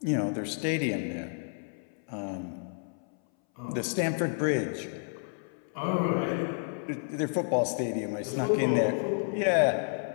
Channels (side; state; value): right; silent; 58 dB below the other